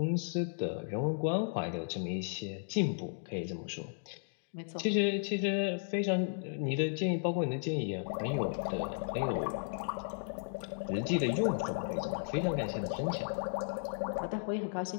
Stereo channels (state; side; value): silent; right; digital silence